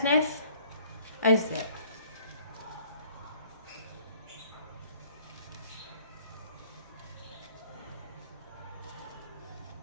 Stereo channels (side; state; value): both; inverted; correlation -0.57